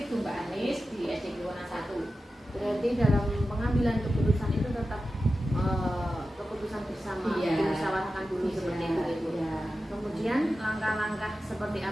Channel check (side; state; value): both; normal; correlation 0.93